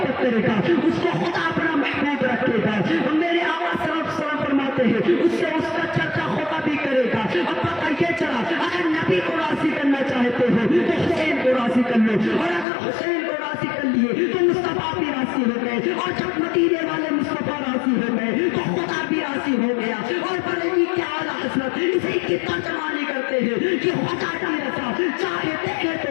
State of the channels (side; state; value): right; drops out; at 12.7 s